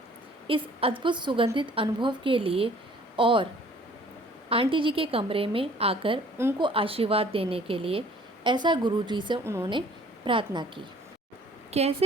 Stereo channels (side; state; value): both; normal; correlation 0.54